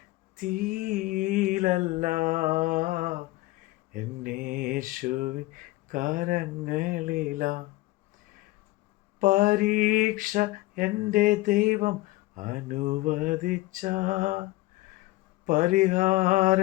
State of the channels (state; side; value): quieter; right; 19.5 dB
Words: തീയിലല്ല, എൻ യേശുവിൻ കരങ്ങളിലാ. പരീക്ഷ എൻ്റെ ദൈവം അനുവദിച്ച